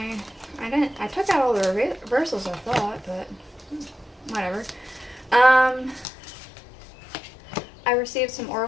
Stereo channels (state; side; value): drops out; right; at 6.1 s